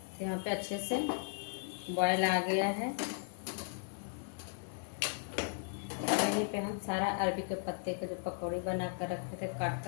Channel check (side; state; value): right; silent; digital silence